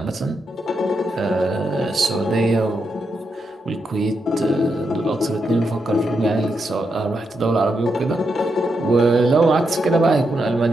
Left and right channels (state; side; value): normal; both; correlation 0.83